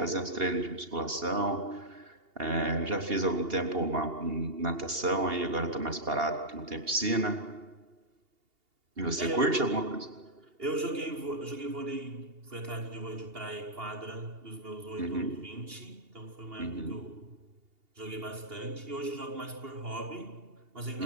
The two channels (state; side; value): late; left; 2.8 ms